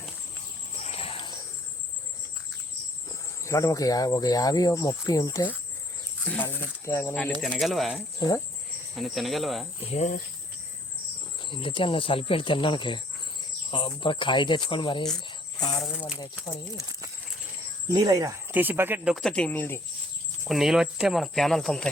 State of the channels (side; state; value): both; normal; correlation 0.61